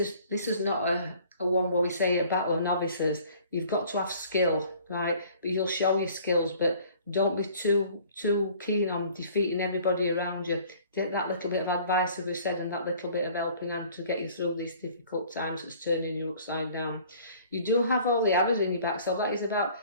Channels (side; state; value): both; inverted; correlation -0.52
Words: not a one where we say a battle of novices. You've got to have skill, right? But you'll show your skills, but don't be too keen on defeating everybody around you. Take that little bit of advice, as we said, and that little bit of helping hand to get you through these difficult times that's turning you upside down. You do have all the arrows in your back, so that is about